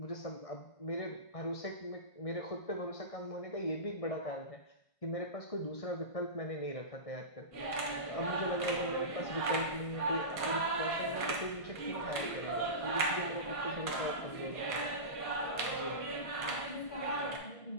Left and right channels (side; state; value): right; late; 1.5 ms